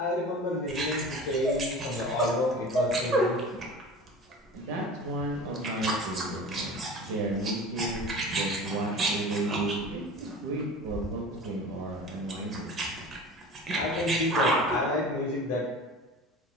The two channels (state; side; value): normal; both; correlation 0.37